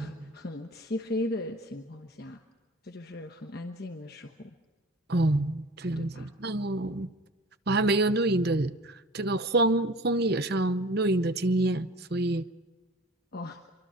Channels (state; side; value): normal; both; correlation 0.42